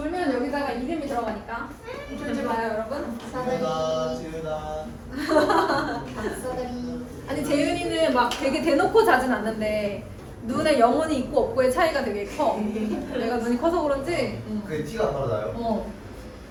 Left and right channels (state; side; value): identical; both; correlation 1.00